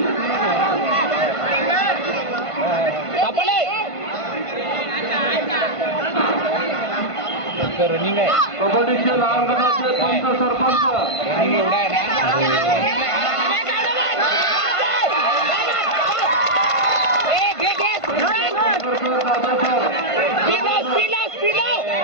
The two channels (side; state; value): right; late; 1.5 ms